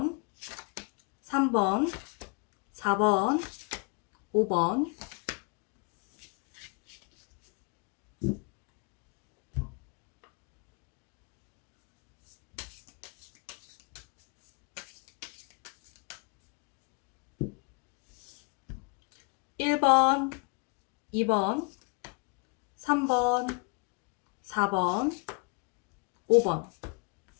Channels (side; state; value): right; quieter; 33.3 dB